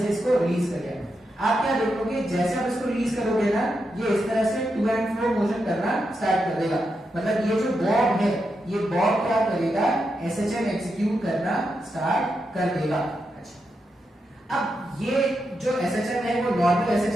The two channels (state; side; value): normal; both; correlation 0.85